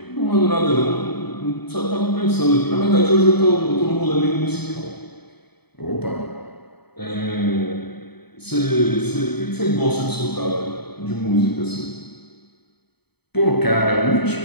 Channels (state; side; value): late; right; 0.98 ms